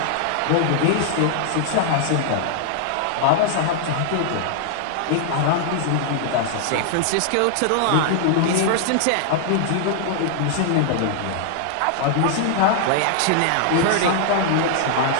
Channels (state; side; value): different; both; correlation -0.01